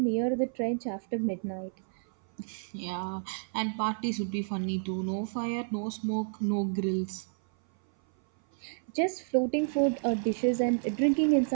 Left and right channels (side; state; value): left; silent; 57 dB below the other